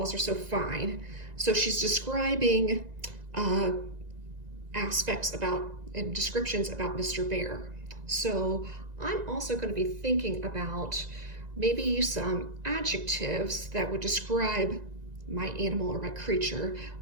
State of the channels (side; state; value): left; late; 1.9 ms